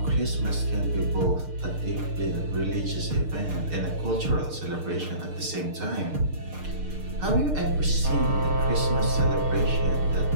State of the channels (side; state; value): left; late; 6.6 ms